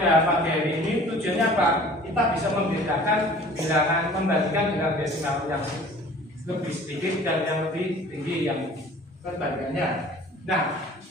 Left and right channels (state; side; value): normal; both; correlation 0.48